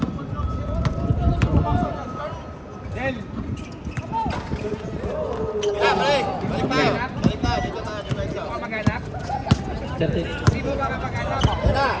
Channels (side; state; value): both; identical; correlation 1.00